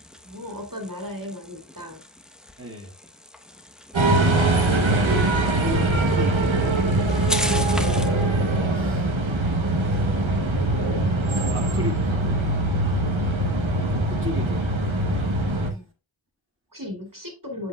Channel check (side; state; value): both; normal; correlation 0.28